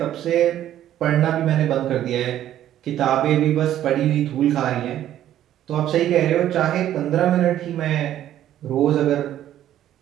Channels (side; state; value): left; quieter; 11.9 dB